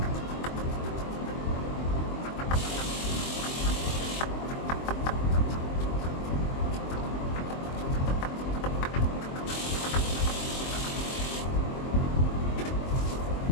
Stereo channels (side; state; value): right; late; 23 ms